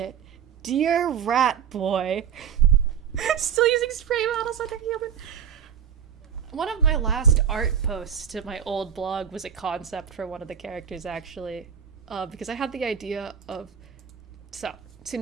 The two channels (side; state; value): left; quieter; 8.3 dB